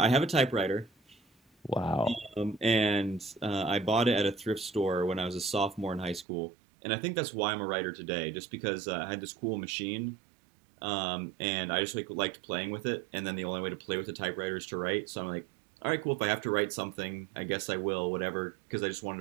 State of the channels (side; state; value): left; drops out; at 6.2 s